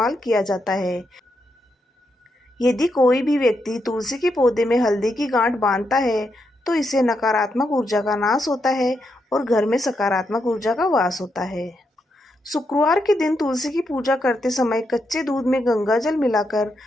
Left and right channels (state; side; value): normal; both; correlation 0.82